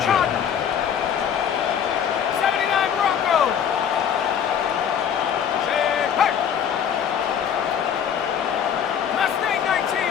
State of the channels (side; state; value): right; quieter; 8.3 dB